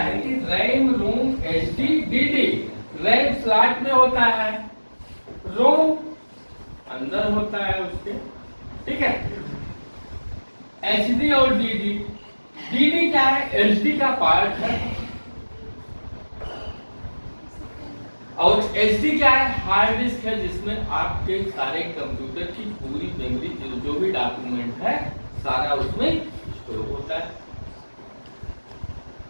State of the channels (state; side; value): inverted; both; correlation -1.00